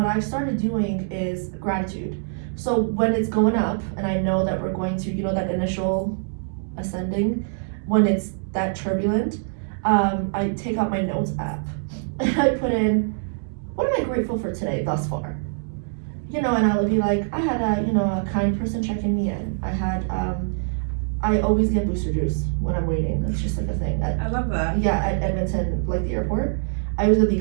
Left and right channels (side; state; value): left; silent; digital silence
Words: I've started doing is gratitude. So when it's going up, and I know that we're going to, that initial ascending, when it's that turbulent, I take out my notes app and I put in, what am I grateful for today thus far? And I'll be like, I had a kind person checking me in. I always get booster juice when I'm waiting. That's just like a thing. I love that. Yeah, at Edmonton, like the airport. I always get the